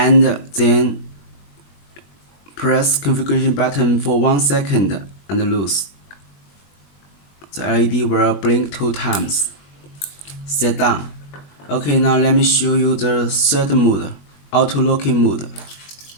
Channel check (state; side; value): late; right; 21 ms